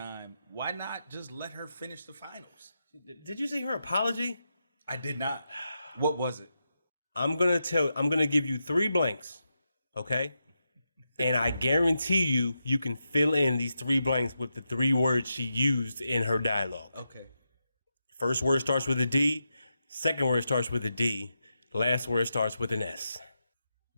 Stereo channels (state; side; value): inverted; both; correlation -0.87